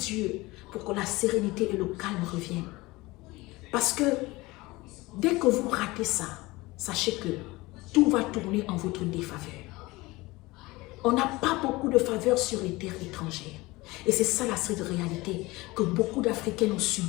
pour que la sérénité et le calme reviennent. Parce que dès que vous ratez ça, sachez que tout va tourner en votre défaveur. On n'a pas beaucoup de faveurs sur les terres étrangères. Et c'est ça la stricte réalité que beaucoup d'Africains ont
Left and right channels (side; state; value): right; quieter; 21.3 dB